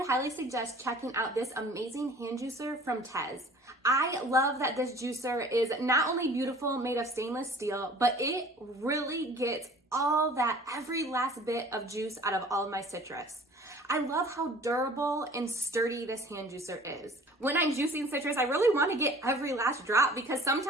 highly suggest checking out this amazing hand juicer from TEZZ. I love that this juicer is not only beautiful, made of stainless steel, but it really gets all that every last bit of juice out of all of my citrus. I love how durable and sturdy this hand juicer is. When I'm juicing citrus, I really want to get every last drop because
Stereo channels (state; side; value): normal; both; correlation 0.48